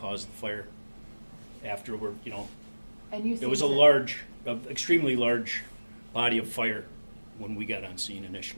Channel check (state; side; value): inverted; both; correlation -1.00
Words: of the fire. Afterward, And you it was a extremely large body of fire when we got on scene